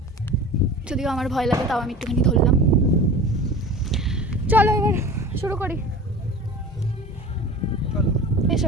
যদিও আমার ভয় লাগে, তাও আমি একটুখানি ধরলাম। চলো এবার শুরু করি,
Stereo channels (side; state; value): both; normal; correlation 0.37